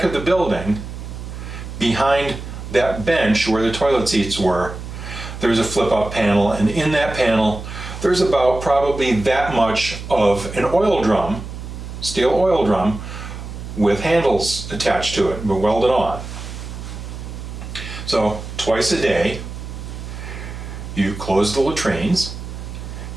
of the building, behind that bench where the toilet seats were, there's a flip-up panel, and in that panel, there's about probably that much of an oil drum, steel oil drum, with handles attached to it, but welded on. So twice a day, you close the latrines,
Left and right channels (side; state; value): right; noise; hum, 10 dB below the sound